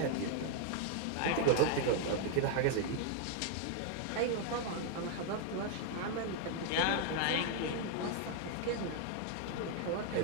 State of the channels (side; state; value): both; different; correlation 0.00